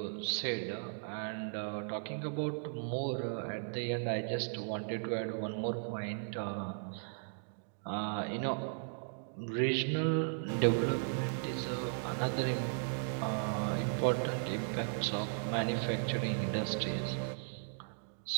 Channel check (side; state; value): left; silent; digital silence